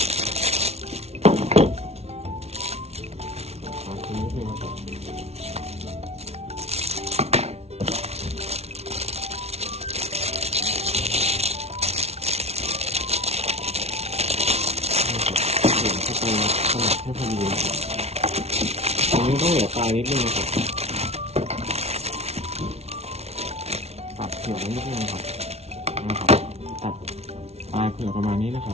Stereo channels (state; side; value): late; left; 0.31 ms